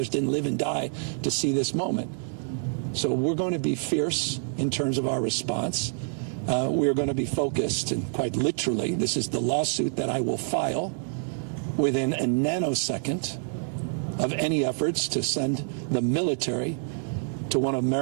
didn't live and die to see this moment. So we're going to be fierce in terms of our response. We're going to be focused, and quite literally, this is the lawsuit that I will file within a nanosecond of any efforts to send the military to one of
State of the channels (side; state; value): left; silent; digital silence